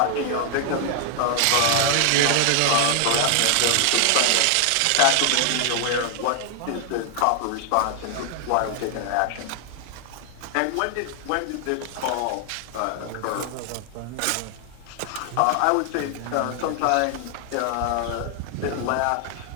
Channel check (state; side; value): different; both; correlation 0.00